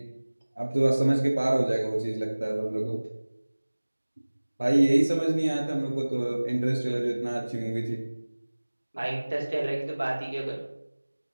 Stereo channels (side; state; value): both; inverted; correlation -1.00